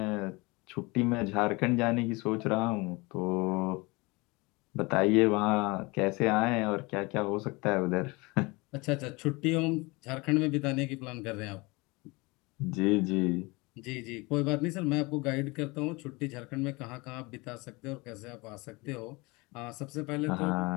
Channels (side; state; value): right; quieter; 25.2 dB